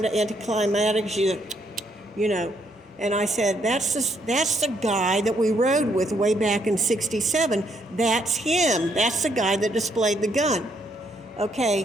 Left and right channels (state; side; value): normal; both; correlation 0.72